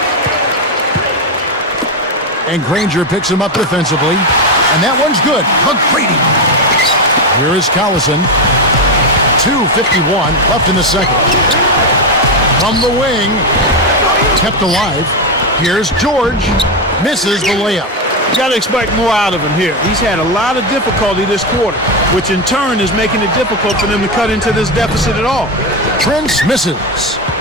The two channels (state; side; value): normal; both; correlation 0.10